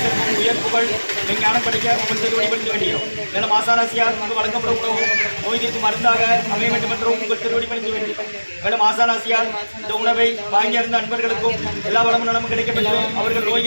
உயர் புகழ் விஞ்ஞானம் படிக்க உங்கள் திருவடிபடுத்த வேண்டியோம். மேலும் ஆசானாசியார் உங்களுக்கு வழங்கப்படும் உணவு நோய் தீர்க்கும் மருந்தாக அமைய வேண்டும் என்றும் உங்கள் திருவடிபடுத்த வேண்டியோம். மேலும் ஆசானாசியார் இந்த உணவை வாங்கியிருந்த அன்பர்களுக்கும் எல்லா வளமும் நலமும் கிடைக்கப்பட்டு அவர்கள்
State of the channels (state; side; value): inverted; both; correlation -1.00